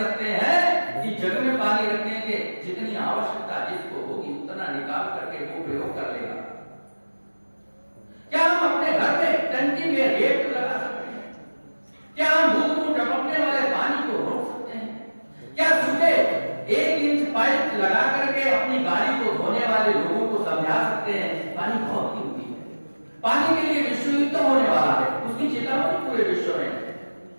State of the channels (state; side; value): inverted; both; correlation -1.00